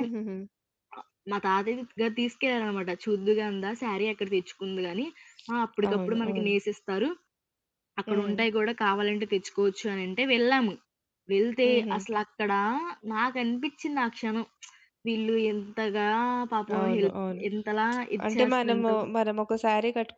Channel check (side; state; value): both; identical; correlation 1.00